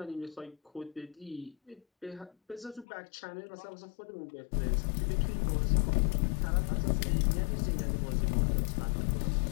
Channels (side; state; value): right; drops out; at 2.9 s